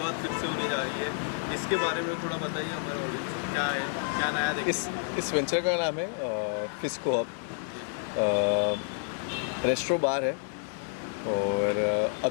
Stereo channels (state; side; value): silent; right; 58 dB below the other